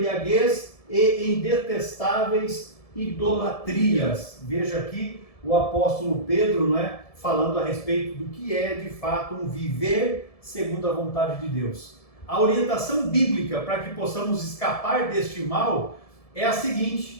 em detestáveis idolatrias. Veja aqui o apóstolo Pedro, não é, falando a respeito do que é de fato um viver segundo a vontade de Deus. A orientação bíblica para que possamos escapar deste mal é a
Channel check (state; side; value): late; right; 1.7 ms